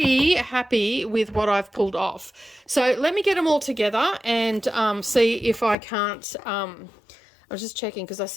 happy with what I've pulled off. So let me get them all together and see if I can't, I was just checking because I've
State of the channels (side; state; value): right; drops out; at 5.8 s